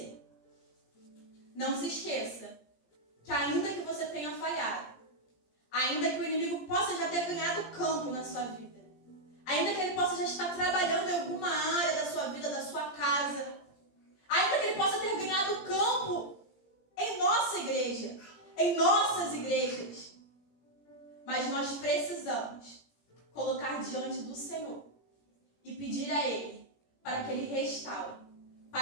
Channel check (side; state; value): right; late; 17 ms